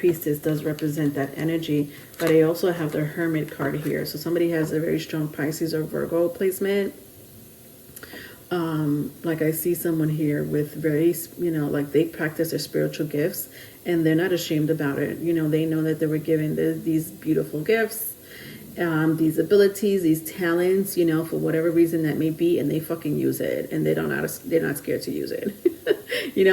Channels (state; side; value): identical; both; correlation 1.00